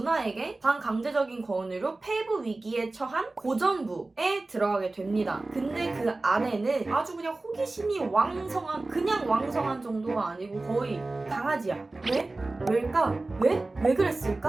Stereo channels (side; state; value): left; quieter; 3.2 dB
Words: 반강제적인 권유로 폐부 위기에 처한 고전부에 들어가게 됩니다. 근데 그 아내는 아주 그냥 호기심이 왕성한 그냥 왕성한 정도가 아니고 거의 강아지야. 왜? 왜일까? 왜? 왜